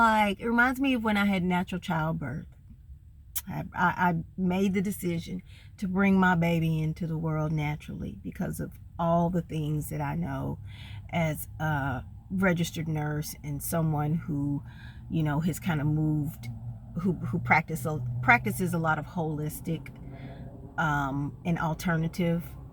it reminds me of when I had natural childbirth. I made the decision to bring my baby into the world naturally because of all the things that I know as a registered nurse and someone who, has kind of moved, who practices a lot of holistic and alternative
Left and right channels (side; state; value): both; identical; correlation 1.00